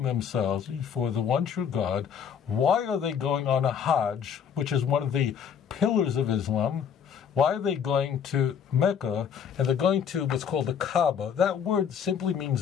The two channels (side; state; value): right; quieter; 7.7 dB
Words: themselves before the one true God, why are they going on a Hajj, which is one of the pillars of Islam? Why are they going to Mecca, and they're going to what's called the Kaaba? That word simply